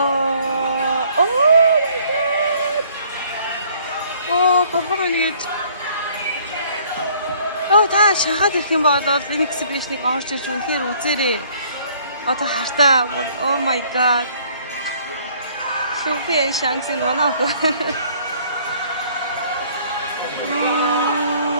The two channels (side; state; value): both; inverted; correlation -0.58